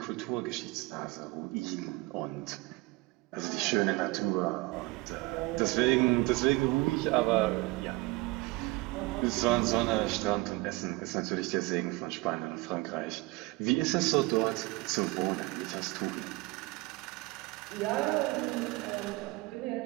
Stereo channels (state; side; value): quieter; left; 22.9 dB